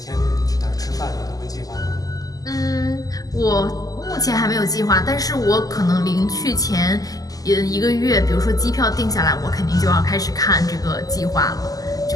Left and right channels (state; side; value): late; right; 0.17 ms